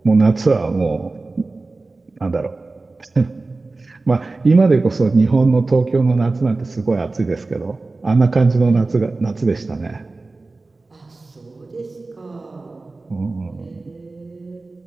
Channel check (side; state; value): left; quieter; 3.4 dB